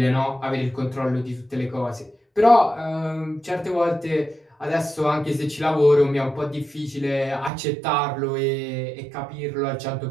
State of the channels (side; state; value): left; drops out; at 7.5 s